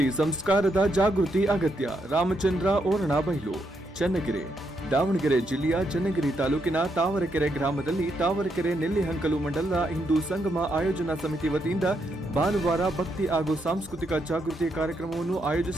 ಸಂಸ್ಕಾರದ ಜಾಗೃತಿ ಅಗತ್ಯ. ರಾಮಚಂದ್ರ ಓರಣಬೈಲು, ಚನ್ನಗಿರಿ. ದಾವಣಗೆರೆ ಜಿಲ್ಲೆಯ ಚನ್ನಗಿರಿ ತಾಲೂಕಿನ ತಾವರೆಕೆರೆ ಗ್ರಾಮದಲ್ಲಿ ತಾವರೆಕೆರೆ ನೆಲ್ಲಿಹಂಕಲು ಮಂಡಲದ ಹಿಂದೂ ಸಂಗಮ ಆಯೋಜನಾ ಸಮಿತಿ ವತಿಯಿಂದ ಭಾನುವಾರ ಭಕ್ತಿ ಹಾಗೂ ಸಾಂಸ್ಕೃತಿಕ ಜಾಗೃತಿ ಕಾರ್ಯಕ್ರಮವನ್ನು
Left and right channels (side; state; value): both; normal; correlation 0.79